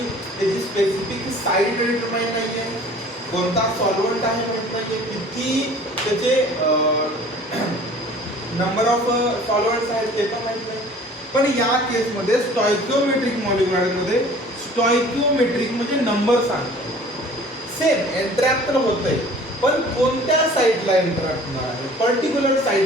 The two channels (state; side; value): normal; both; correlation 0.48